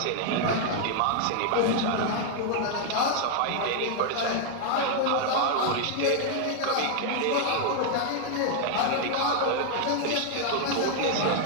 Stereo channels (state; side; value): different; both; correlation 0.00